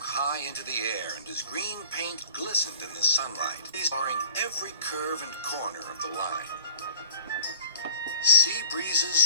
high into the air, and his green paint glistened in the sunlight, exploring every curve and corner of the line. Sea breezes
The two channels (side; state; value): both; inverted; correlation -0.44